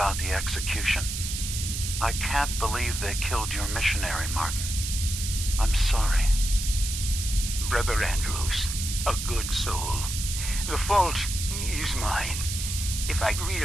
the execution. I can't believe they killed your missionary, Martin. I'm sorry. Brother Andrews, a good soul. The fault is mine. If I'd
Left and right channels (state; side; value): noise; right; hiss, 4 dB below the sound